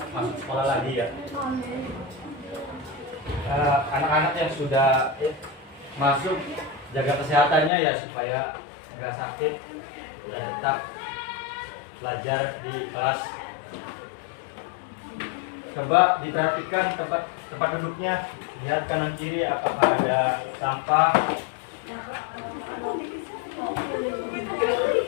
masuk sekolah lagi ya. Anak-anak yang sudah masuk, jaga kesehatannya ya supaya nggak sakit dan tetap belajar di kelas. Coba diperhatikan tempat duduknya, lihat kanan kiri apakah ada sampah.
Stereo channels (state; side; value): drops out; right; at 7.7 s